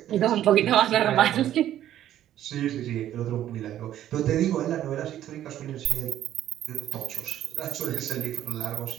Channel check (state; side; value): quieter; left; 12.0 dB